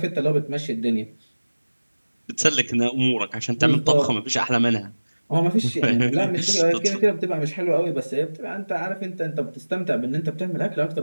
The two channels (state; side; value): inverted; both; correlation -1.00